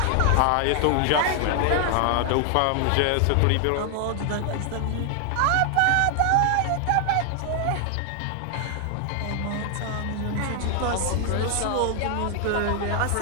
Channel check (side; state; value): both; different; correlation 0.00